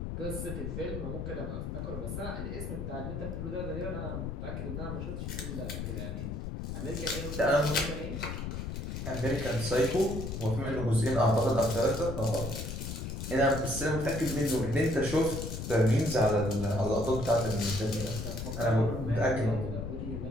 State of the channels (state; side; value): noise; left; rumble, 5 dB below the sound